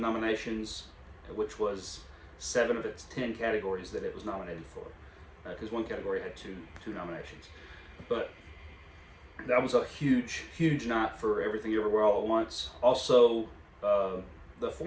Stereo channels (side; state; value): both; identical; correlation 1.00